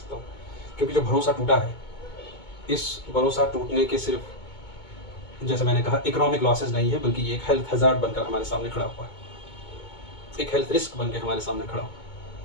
हूँ। क्योंकि जो भरोसा टूटा है, इस भरोसा टूटने के सिर्फ, जैसे मैंने कहा, इकोनॉमिक लॉसेस नहीं है, बल्कि ये एक हेल्थ हज़ार्ड बनकर हमारे सामने खड़ा हुआ है, एक हेल्थ रिस्क बन के हमारे सामने खड़ा हुआ है।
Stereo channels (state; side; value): late; right; 2.2 ms